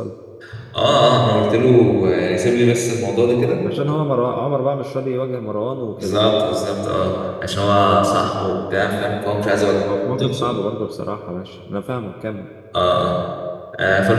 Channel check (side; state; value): both; identical; correlation 1.00